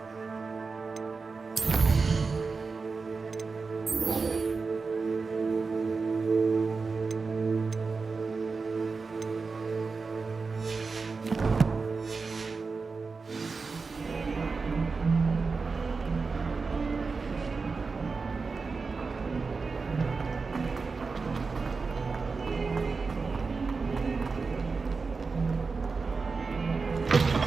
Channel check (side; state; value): left; quieter; 4.5 dB